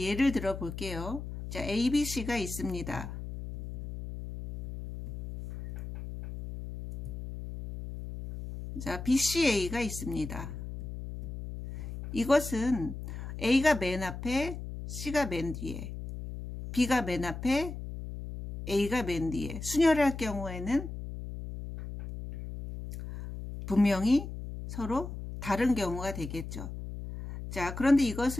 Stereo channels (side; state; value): left; noise; hum, 8 dB below the sound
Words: 예를 들어 볼게요. 자, ABC가 있습니다. 자, BCA가 있습니다. 이것은 A가 맨 앞에, C가 맨 뒤에, B가 맨 앞에, A가 맨 뒤에 순열할 경우에는 분명히 서로 다른 경우가 되겠죠. 자, 그런데